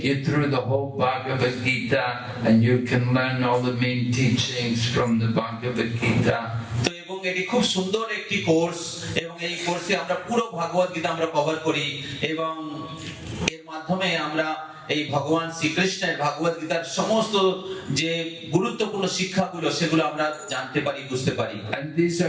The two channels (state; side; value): identical; both; correlation 1.00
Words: you through the whole Bhagavad Gita and you can learn all the main teachings from the Bhagavad Gita. তো এবং এটি খুব সুন্দর একটি কোর্স, এবং এই কোর্সে আমরা পুরো ভাগবত গীতা আমরা কভার করি, এবং এর মাধ্যমে আমরা এই ভগবান শ্রীকৃষ্ণের ভগবত গীতার সমস্ত যে গুরুত্বপূর্ণ শিক্ষাগুলো সেগুলো আমরা জানতে পারি, বুঝতে পারি। And these